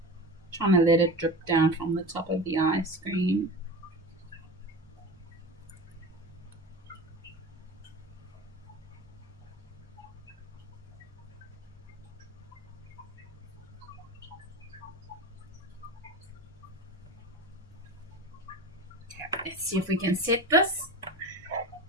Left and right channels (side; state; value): both; normal; correlation 0.30